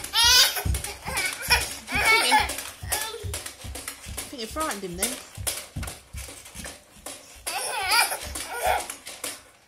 I think you frightened him then.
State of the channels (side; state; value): both; identical; correlation 1.00